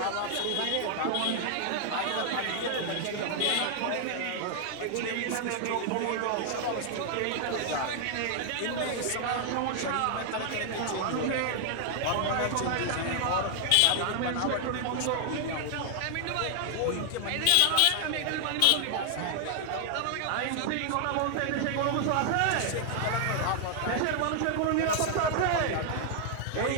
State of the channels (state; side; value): different; both; correlation 0.00